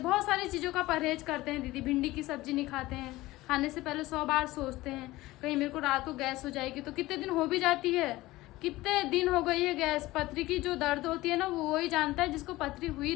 बहुत सारी चीज़ों का परहेज करते हैं दीदी। भिंडी की सब्जी नहीं खाते हैं, खाने से पहले 100 बार सोचते हैं कहीं मेरे को रात को गैस हो जाएगी। तो कितने दिन हो भी जाती है, कितने दिन हो गई है गैस। पथरी की जो दर्द होती है ना वो वही जानता है जिसको पथरी हुई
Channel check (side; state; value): right; quieter; 18.4 dB